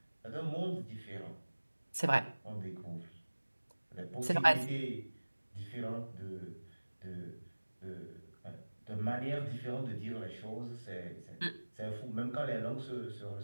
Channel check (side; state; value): both; inverted; correlation -1.00